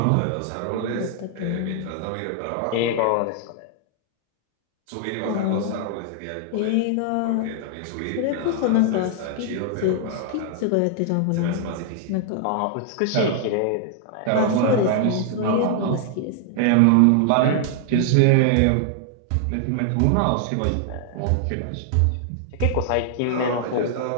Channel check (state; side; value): different; both; correlation -0.01